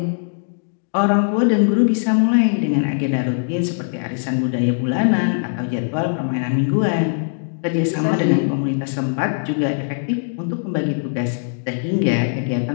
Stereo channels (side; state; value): right; silent; digital silence